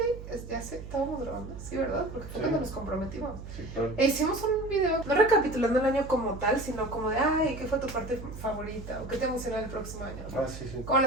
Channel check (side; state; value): right; noise; hum, 11 dB below the sound